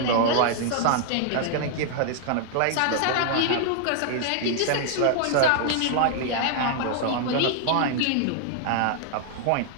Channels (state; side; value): different; both; correlation 0.00